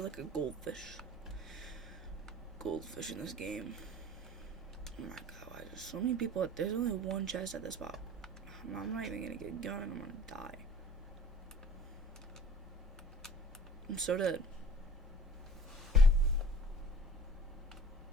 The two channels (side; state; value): both; normal; correlation 0.46